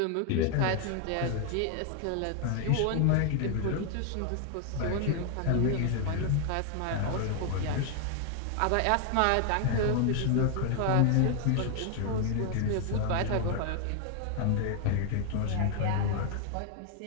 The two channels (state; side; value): different; both; correlation 0.00